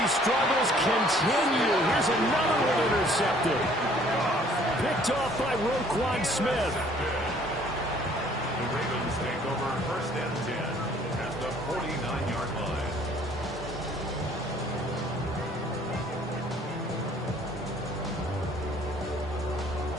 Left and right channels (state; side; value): normal; both; correlation 0.58